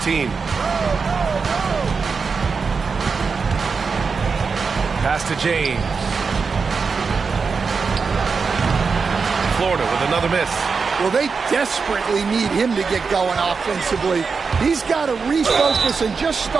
Pass to James. Florida with another miss. Well, they desperately need him to get going offensively. He's got to refocus and just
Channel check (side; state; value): left; quieter; 5.1 dB